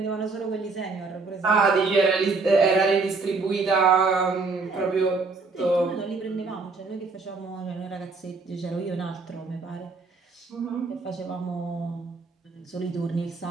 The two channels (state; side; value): quieter; left; 4.1 dB